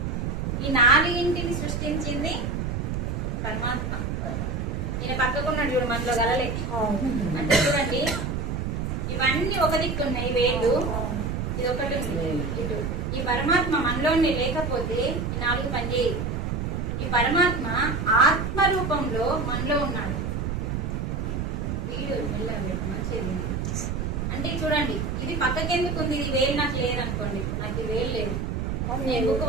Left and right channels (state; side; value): noise; right; rumble, 2 dB below the sound